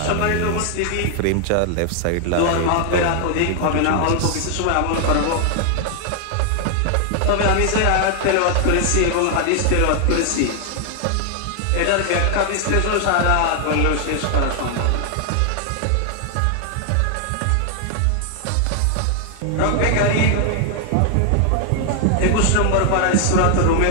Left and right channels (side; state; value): both; different; correlation 0.00